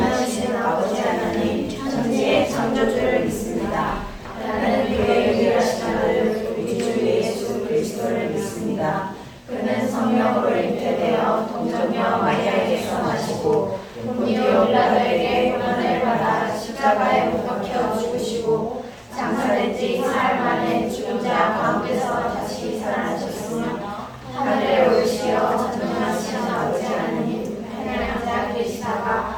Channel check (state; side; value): identical; both; correlation 1.00